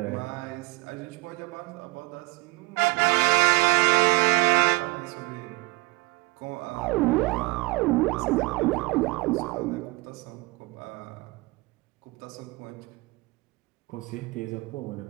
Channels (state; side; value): quieter; left; 24.5 dB